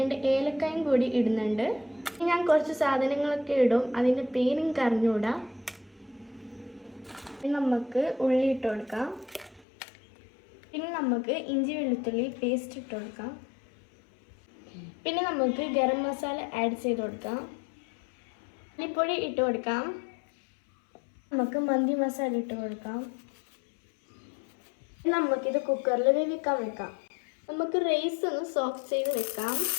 ഏലക്കായും കൂടി ഇടുന്നുണ്ട്. ഞാൻ കുറച്ച് സാധനങ്ങളൊക്കെ ഇടും, അതിൻ്റെ പേരും കറിഞ്ഞൂടാ. നമുക്ക് ഉള്ളി ഇട്ട് കൊടുക്കാം. പിന്നെ നമുക്ക് ഇഞ്ചി വെളുത്തുള്ളി പേസ്റ്റ് ഇട്ട് കൊടുക്കാം. പിന്നെ നമുക്ക് ഗരം മസാല ആഡ് ചെയ്ത് കൊടുക്കാം. മല്ലിപ്പൊടി ഇട്ട് കൊടുക്കാം. നമുക്ക് മന്തി മസാല ഇട്ട് കൊടുക്കാം. നമുക്കിത് കുക്കറിൽ വേവിക്കാൻ വെക്കാം. നമുക്ക് റൈസ് ഒന്ന് സോക്ക് ചെയ്ത് വെക്കാം.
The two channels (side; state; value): right; drops out; at 9.7 s